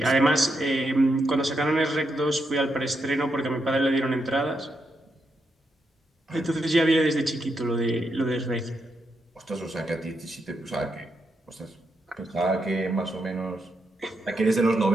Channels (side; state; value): both; normal; correlation 0.82